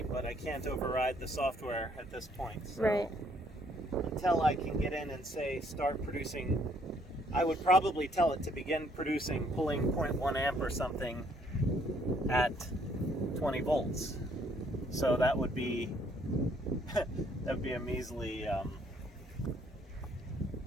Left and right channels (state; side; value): normal; both; correlation 0.66